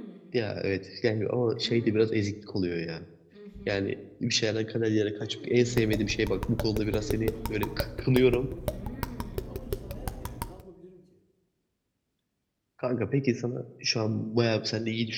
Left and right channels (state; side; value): identical; both; correlation 1.00